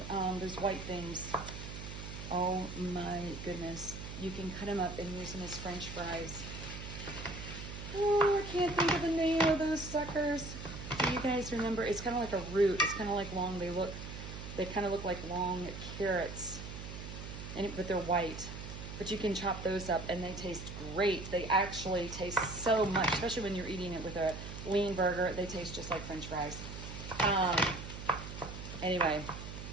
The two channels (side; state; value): right; noise; hum, 9 dB below the sound